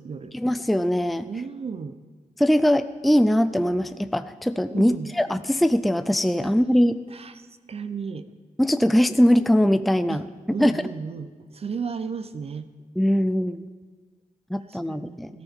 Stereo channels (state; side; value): normal; both; correlation 0.98